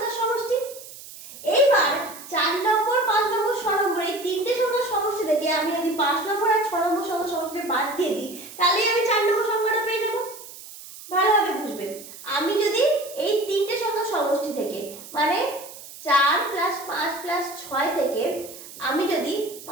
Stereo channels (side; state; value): right; noise; hiss, 16 dB below the sound